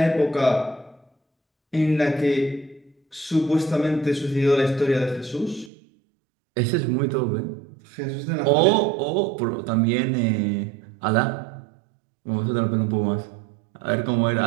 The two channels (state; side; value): drops out; left; at 5.7 s